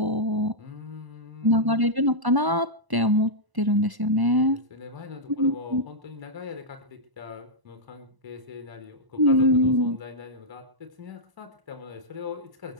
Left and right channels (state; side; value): late; left; 1.0 ms